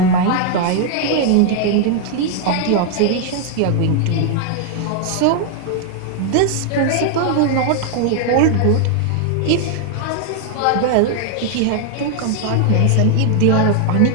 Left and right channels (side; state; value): both; different; correlation 0.00